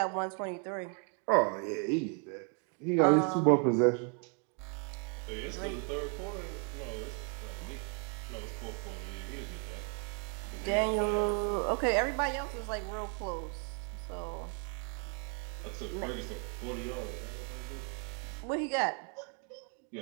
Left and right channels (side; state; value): left; quieter; 39.5 dB